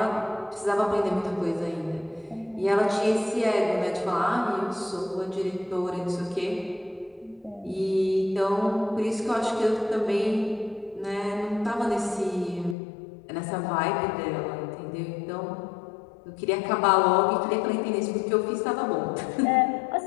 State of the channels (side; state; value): right; drops out; at 12.8 s